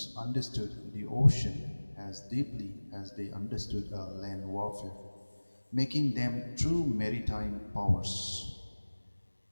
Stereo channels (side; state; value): both; inverted; correlation -1.00